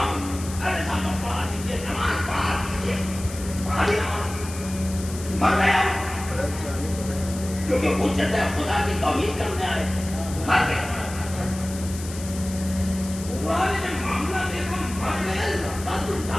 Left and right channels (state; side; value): noise; left; hiss, 13 dB below the sound